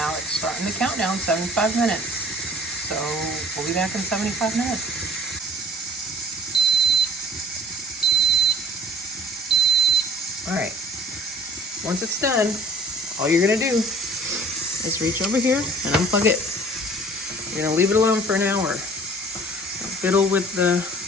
it's starting the countdown, 75 minutes. So we'll be back in 75 minutes. All right, once it's done, all you're gonna do is reach over here and unplug it. You're gonna leave it alone for an hour. Don't fiddle with the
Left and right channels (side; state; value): both; normal; correlation 0.50